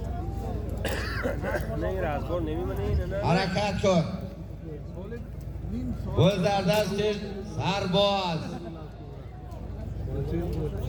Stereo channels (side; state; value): both; identical; correlation 1.00